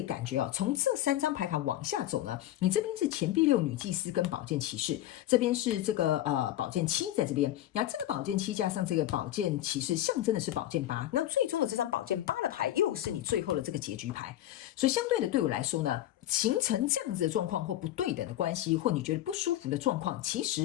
感觉从这3张牌卡往下走呢，你这边是钱币6女祭司跟宝剑骑士，这边是这个宝剑7在这边，然后这个宝剑7加上这个宝剑骑士象征的是宝剑8，那最终的这张宝剑8的牌又是你最后的这个结局牌，所以相对的对我来说呢，形成这样子的状况或不对等的关系，或你觉得不舒服的状况，其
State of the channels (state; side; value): quieter; right; 13.5 dB